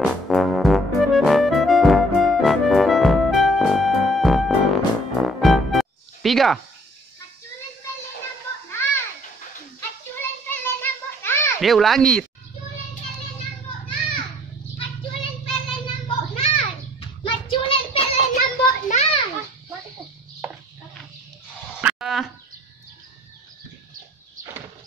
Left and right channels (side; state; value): both; normal; correlation 0.58